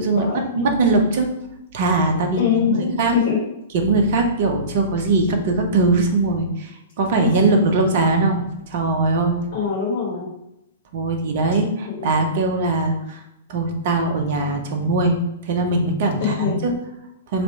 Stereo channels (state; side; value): inverted; both; correlation -0.33